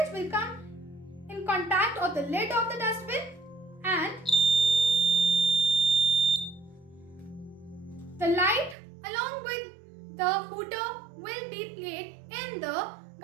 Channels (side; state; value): left; drops out; at 8.8 s